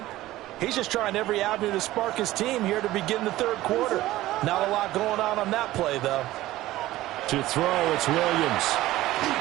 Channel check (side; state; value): left; quieter; 16.2 dB